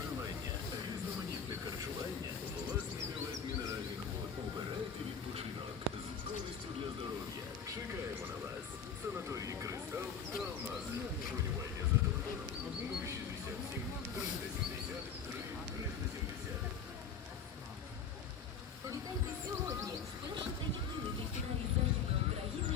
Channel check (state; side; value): quieter; right; 6.5 dB